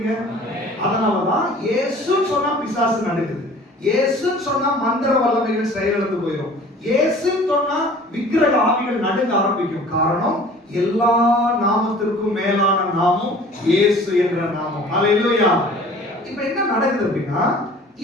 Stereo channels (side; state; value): both; normal; correlation 0.48